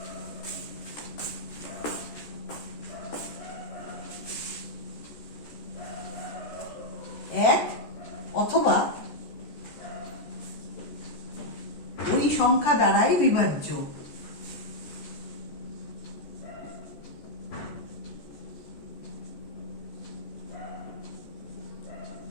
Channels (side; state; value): right; late; 14 ms